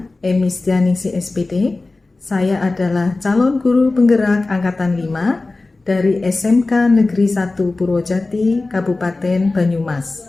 Emistianingsih SPD. Saya adalah calon guru penggerak Angkatan 5 dari SMK Negeri 1 Purwojati, Kabupaten Banyumas.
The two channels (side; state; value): right; quieter; 3.3 dB